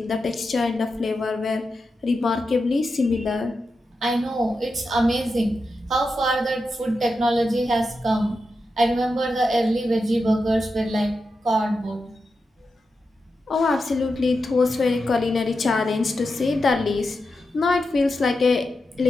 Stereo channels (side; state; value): both; normal; correlation 0.89